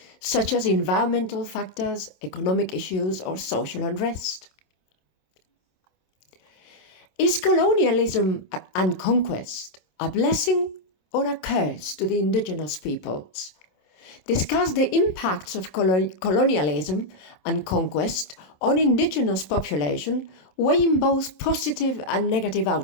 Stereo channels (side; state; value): right; late; 27 ms